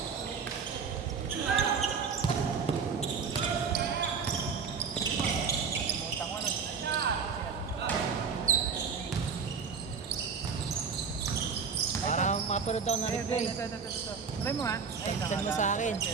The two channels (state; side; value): quieter; left; 5.8 dB